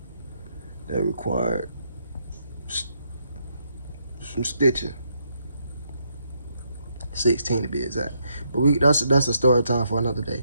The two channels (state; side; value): inverted; both; correlation -0.76